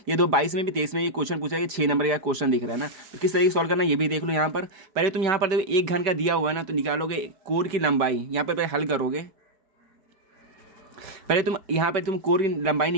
ये 22 में भी 23 में ये क्वेश्चन पूछा गया, 6 नंबर का क्वेश्चन दिख रहा है ना। तो किस तरीके सॉल्व करना है ये भी देख लो। यहाँ पर पहले तुम यहाँ पर देखो एक घन का दिया हुआ है ना, तो निकालोगे कोर की लंबाई। यहाँ पर हल करोगे, पहले तुम यहाँ पर तुम कोर की लंबाई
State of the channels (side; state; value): left; late; 4.7 ms